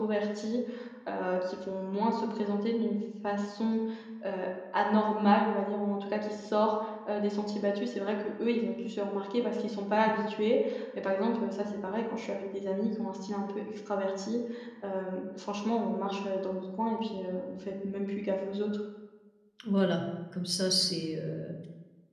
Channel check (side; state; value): both; identical; correlation 1.00